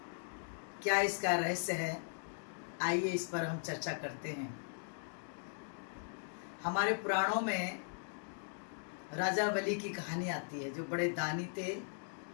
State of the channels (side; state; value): right; silent; digital silence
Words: क्या इसका रहस्य है, आइए इस पर हम चर्चा करते हैं। हमारे पुराणों में राजा बलि की कहानी आती है, जो बड़े दानी थे